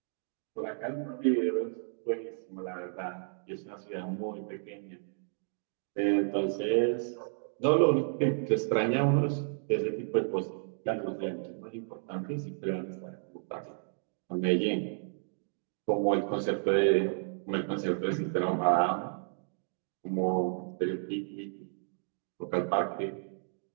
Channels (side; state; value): left; silent; digital silence